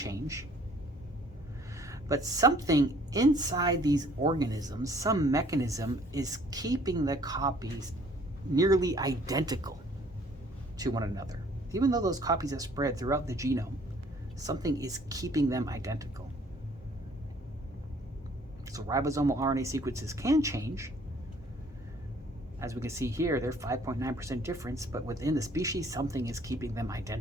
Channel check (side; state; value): both; normal; correlation 0.58